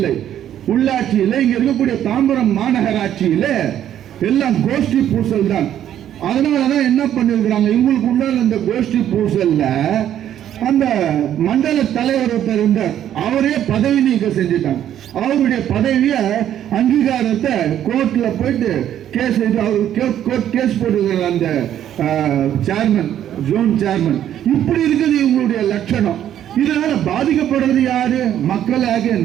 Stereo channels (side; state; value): left; quieter; 10.8 dB